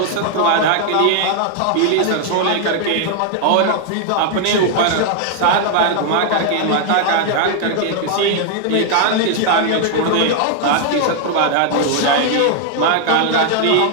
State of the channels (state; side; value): different; both; correlation 0.00